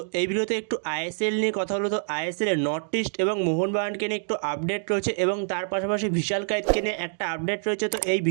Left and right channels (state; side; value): silent; left; digital silence